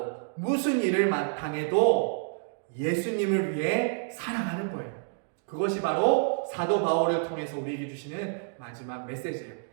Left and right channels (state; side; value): silent; left; digital silence